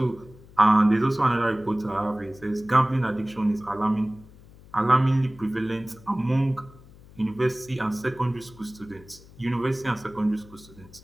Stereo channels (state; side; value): noise; left; hum, 22 dB below the sound